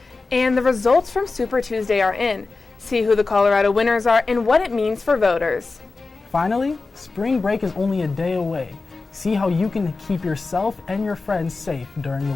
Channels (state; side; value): quieter; right; 3.8 dB